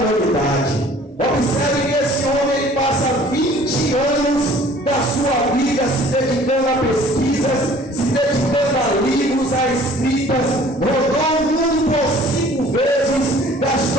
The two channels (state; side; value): normal; both; correlation 0.52